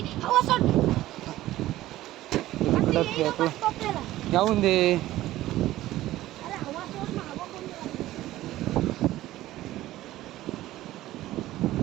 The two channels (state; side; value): quieter; left; 15.4 dB